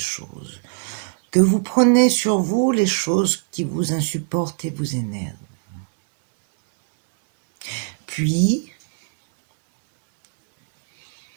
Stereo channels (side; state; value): left; silent; digital silence